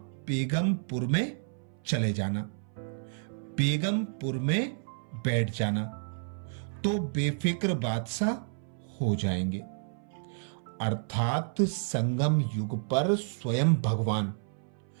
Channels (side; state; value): left; silent; 57 dB below the other